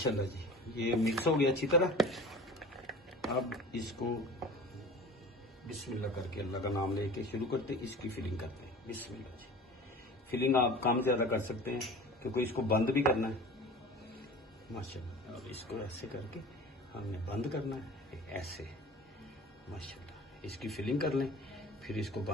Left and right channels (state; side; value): normal; both; correlation 0.39